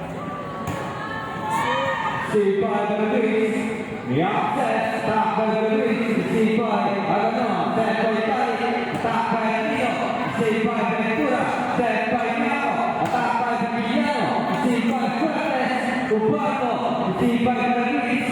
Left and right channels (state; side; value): identical; both; correlation 1.00